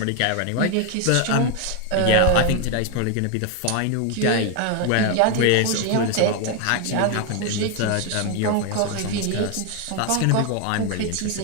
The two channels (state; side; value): different; both; correlation 0.01